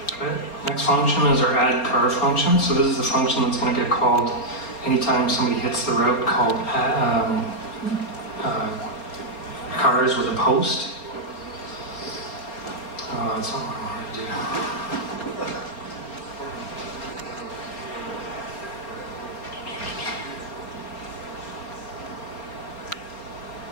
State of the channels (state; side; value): late; right; 4.3 ms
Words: Okay. Next function is our addCar function. So this is the function that's going to get called anytime somebody hits the route called cars with a post. That's not what I wanted to do.